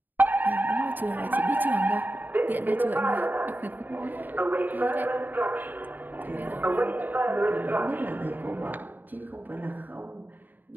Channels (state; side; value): late; left; 0.088 ms